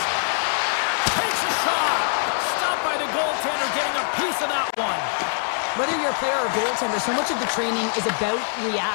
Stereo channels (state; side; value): silent; right; 63 dB below the other